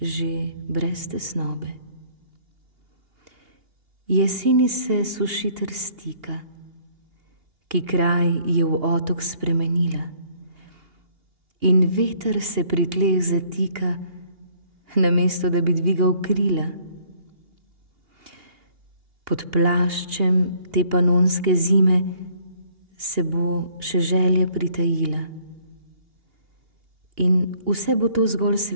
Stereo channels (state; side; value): late; left; 2.8 ms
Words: že brez tesnobe. Jeseni se sušiter stika, ki kraj je v otok spremenila, in veter se pri tleh zatika, namesto da bi dvigal krila. Pod plaščem te panonske zime se bo še želja pritajila, in vse bo to zgolj